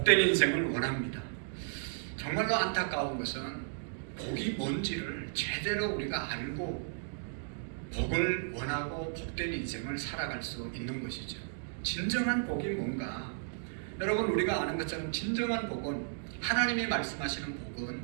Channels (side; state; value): left; silent; digital silence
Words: 인생을 원합니다. 정말로 안타까운 것은 복이 뭔지를 제대로 우리가 알고 복을 원하고 복된 인생을 살아갈 수 있는 것이죠. 진정한 복이 뭔가? 여러분 우리가 아는 것처럼 진정한 복은 하나님이 말씀하시는 복은